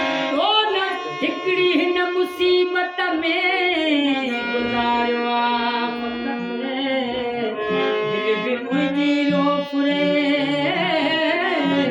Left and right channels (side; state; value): both; identical; correlation 1.00